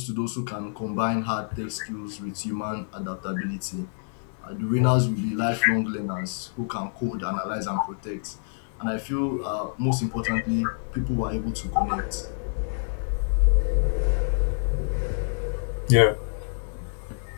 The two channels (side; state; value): right; silent; digital silence